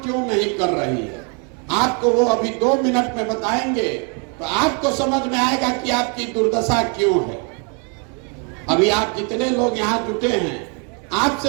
नहीं कर रही है? आपको वो अभी 2 मिनट में बताएंगे तो आपको समझ में आएगा कि आपकी दुर्दशा क्यों है। अभी आप जितने लोग यहाँ जुटे हैं,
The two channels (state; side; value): quieter; left; 37.3 dB